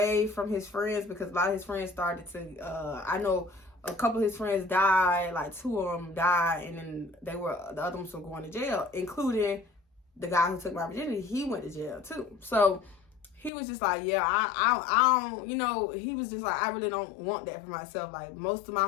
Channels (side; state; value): right; drops out; at 13.5 s